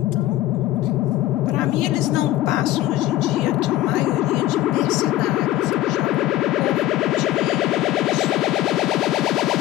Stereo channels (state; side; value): quieter; right; 14.6 dB